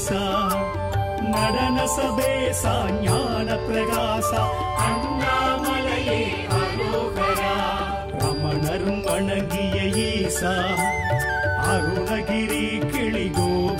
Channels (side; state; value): both; identical; correlation 1.00